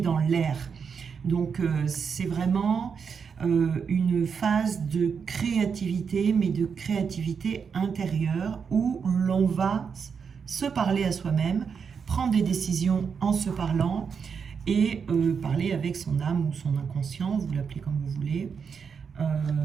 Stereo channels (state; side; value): quieter; left; 6.3 dB